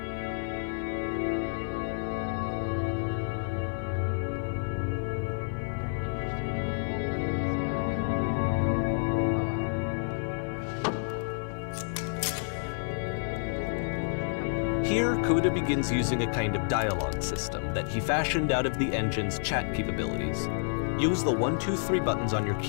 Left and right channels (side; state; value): right; silent; digital silence